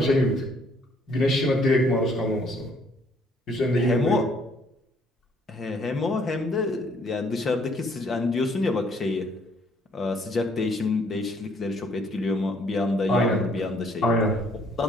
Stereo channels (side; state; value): both; normal; correlation 0.64